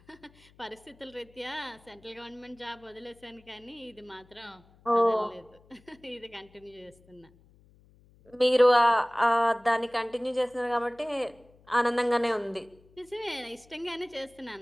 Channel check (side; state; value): left; noise; hum, 28 dB below the sound